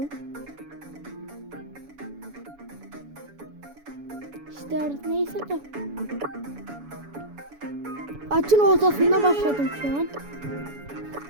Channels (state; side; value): late; left; 7.1 ms